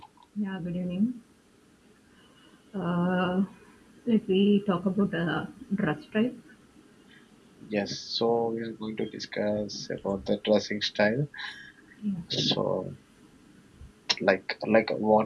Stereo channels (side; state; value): both; identical; correlation 1.00